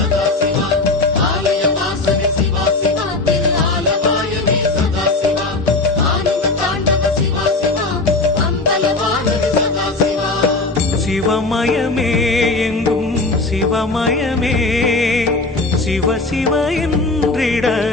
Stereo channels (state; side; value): quieter; right; 3.3 dB